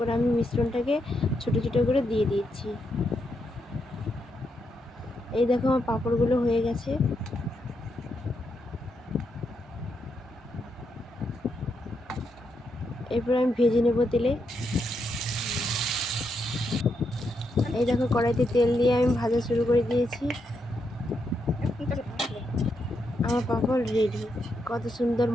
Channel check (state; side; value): normal; both; correlation 0.81